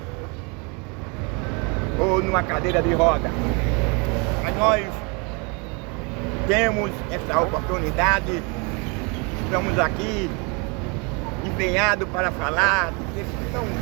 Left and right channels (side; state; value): left; quieter; 31.9 dB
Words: ou numa cadeira de roda. Mas nós temos essa oportunidade, estamos aqui empenhados para falar desse tão